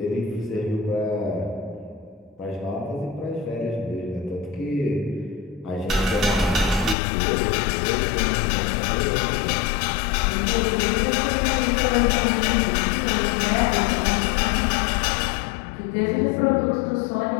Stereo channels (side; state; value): right; drops out; at 7.0 s